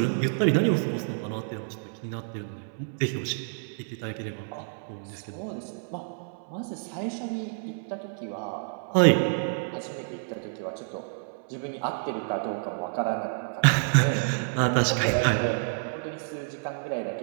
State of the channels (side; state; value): left; silent; 59 dB below the other